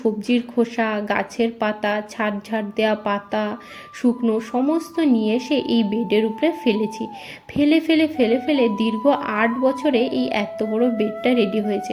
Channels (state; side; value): identical; both; correlation 1.00